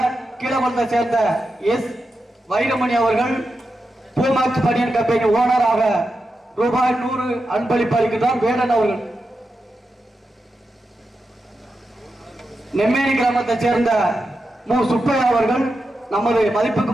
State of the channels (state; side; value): normal; both; correlation 0.89